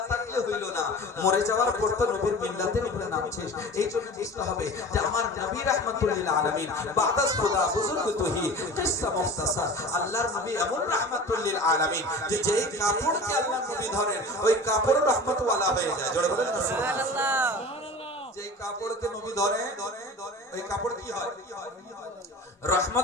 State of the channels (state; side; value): normal; both; correlation 0.37